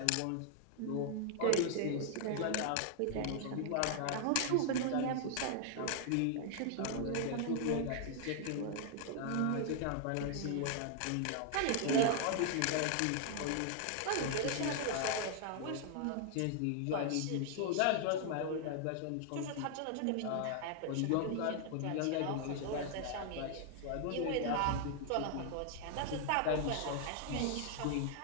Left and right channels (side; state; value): both; different; correlation 0.00